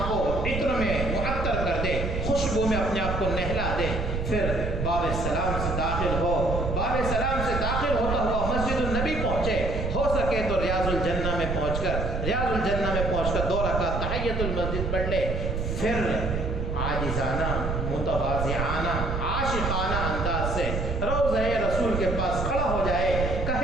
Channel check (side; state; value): right; noise; rumble, 2 dB below the sound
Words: کو عطر میں معطر کر دے، خوشبو میں اپنے آپ کو نہلا دے، پھر باب سلام سے داخل ہو، باب سلام سے داخل ہوتا ہوا مسجد النبی پہنچے، ہو سکے تو ریاض الجنہ میں پہنچ کر 2 رکعت تحیۃ المسجد پڑھ لے، پھر عاجزانہ متواضعانہ عاشقانہ انداز سے روضہ رسول کے پاس کھڑا ہو جائے،